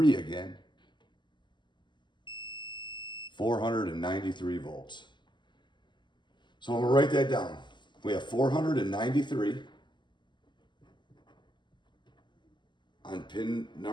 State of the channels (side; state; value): right; late; 0.22 ms